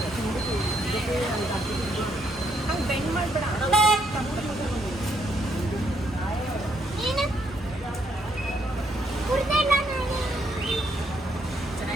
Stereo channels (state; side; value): normal; both; correlation 0.73